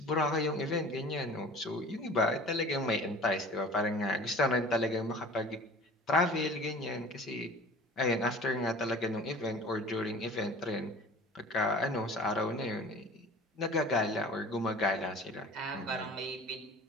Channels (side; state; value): both; normal; correlation 0.43